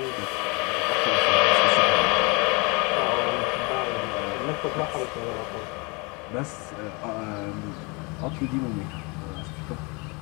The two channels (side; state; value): right; quieter; 29.2 dB